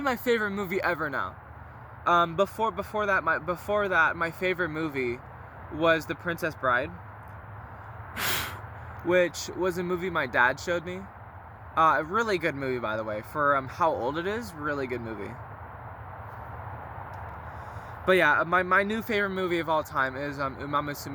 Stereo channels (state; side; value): identical; both; correlation 1.00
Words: my favorite movie ever now. Before that, my favorite movie was The Princess Bride, which was a movie my dad showed me. A really good movie, by the way, for how old it is. Really good movie. But yeah, my new favorite movie of all time is